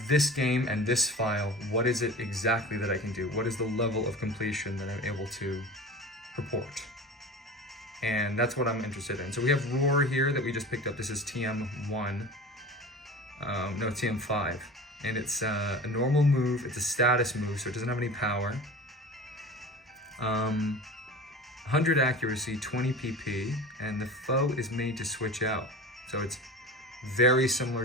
this game and this file, what is it exactly that I can do? What is the level of completion that I'm able to purport? And that's what I'm interested in. So we have Roar here that we just picked up. This is TM1. No, it's TM5. And it's a normal move. It's a status move, so it doesn't have any power. 100 accuracy, 20 PP, and the foe is made to switch out. So it's very similar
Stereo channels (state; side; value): normal; both; correlation 0.35